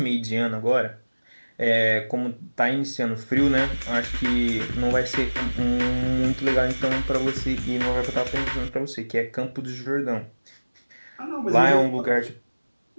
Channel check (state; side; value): inverted; both; correlation -1.00